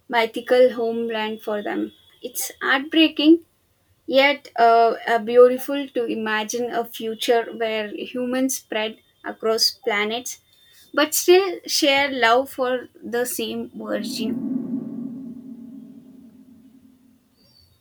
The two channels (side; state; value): both; identical; correlation 1.00